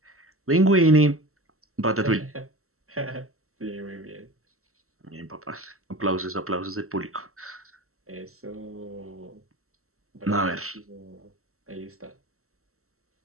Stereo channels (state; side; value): late; left; 0.63 ms